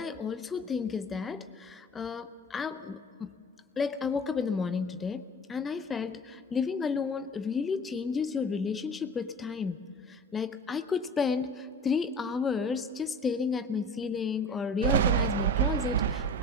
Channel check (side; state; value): both; normal; correlation 0.39